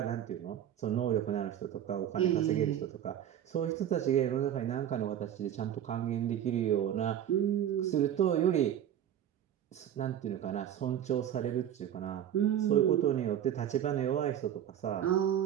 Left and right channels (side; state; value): left; quieter; 10.4 dB